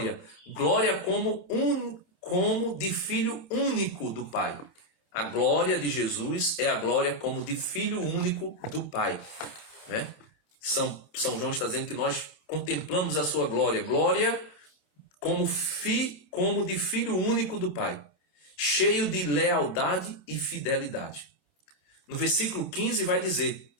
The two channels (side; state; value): right; late; 27 ms